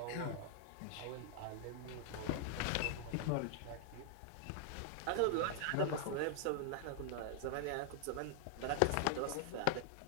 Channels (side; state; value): both; different; correlation -0.01